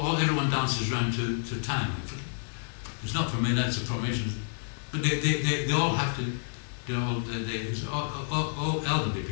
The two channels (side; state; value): right; silent; 58 dB below the other